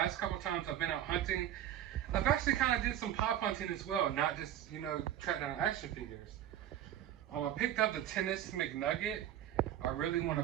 couple times I've been out hunting, I've actually kind of did some pop hunting as well, not just, you know, track down action figures. I picked up the Tennis McNugget. I really want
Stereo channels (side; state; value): left; quieter; 11.5 dB